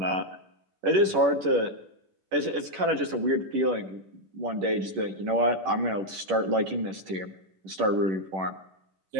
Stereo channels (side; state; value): left; late; 10 ms